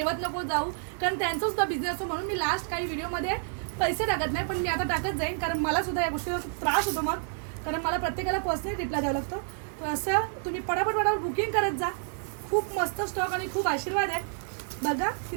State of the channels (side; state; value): left; silent; 55 dB below the other